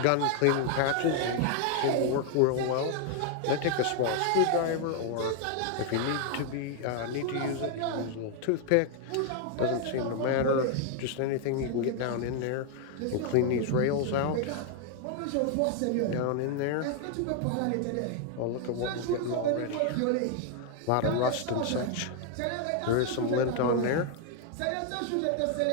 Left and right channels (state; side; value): different; both; correlation 0.00